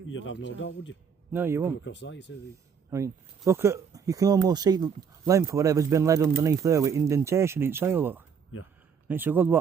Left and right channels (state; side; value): quieter; left; 6.7 dB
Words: have no doubt, would you? No, you Come won't. across that, you say I mean, look at, you can almost see the length of whatever's been led underneath there with indentation in soil, look. Yeah. And it's a good,